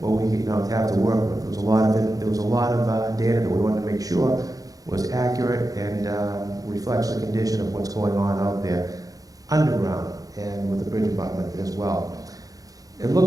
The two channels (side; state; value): left; late; 0.17 ms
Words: we have to work with. There was a lot of data that we wanted to make sure was accurate and reflects the condition of what's going on out there underground and with the bridge abutment as well. It